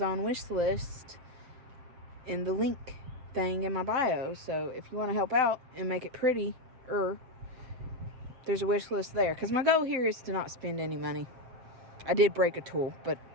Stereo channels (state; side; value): late; left; 7.7 ms